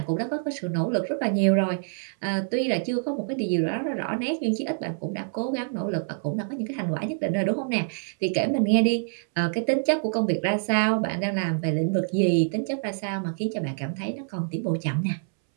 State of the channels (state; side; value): silent; left; 61 dB below the other